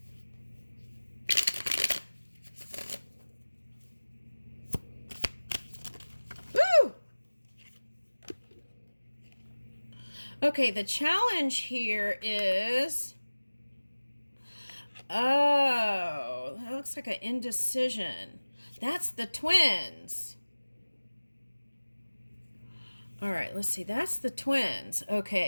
Okay, the challenge here is, oh, that looks like an indecision. That's the twins. All right, let's see. That's the twins.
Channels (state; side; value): inverted; both; correlation -1.00